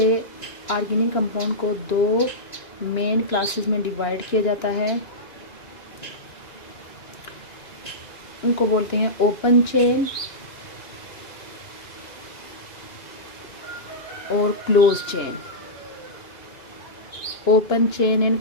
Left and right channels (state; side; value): late; right; 2.9 ms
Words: ऑर्गेनिक कंपाउंड को दो मेन क्लासेस में डिवाइड किया जाता है। उनको बोलते हैं ओपन चेन और close chain. Open chain and